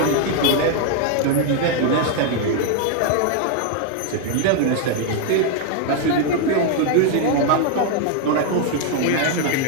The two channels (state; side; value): different; both; correlation 0.00